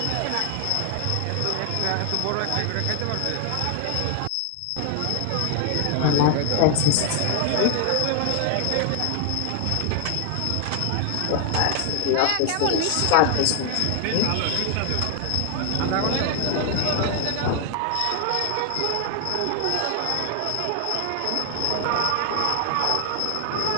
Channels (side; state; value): both; different; correlation 0.00